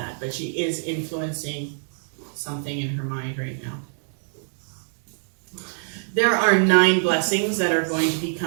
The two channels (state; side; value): silent; left; digital silence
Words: but she is influencing something in her mind right now. There are 9 blessings that are going to be